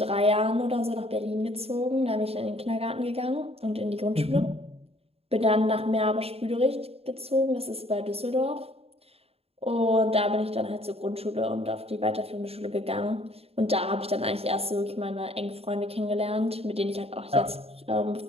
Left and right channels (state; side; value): late; left; 0.29 ms